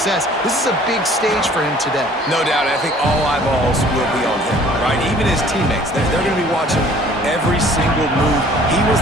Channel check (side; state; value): both; normal; correlation 0.53